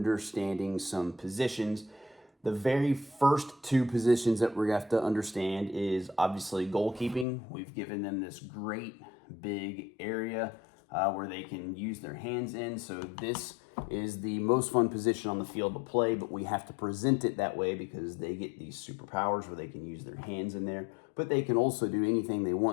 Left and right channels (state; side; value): drops out; right; at 7.2 s